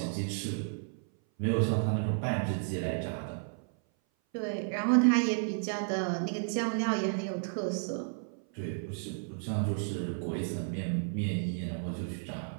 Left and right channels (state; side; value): silent; left; 56 dB below the other